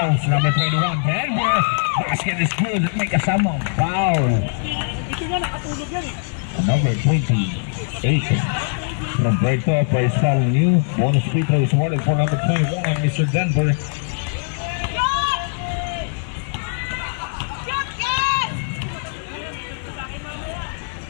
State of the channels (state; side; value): silent; right; 65 dB below the other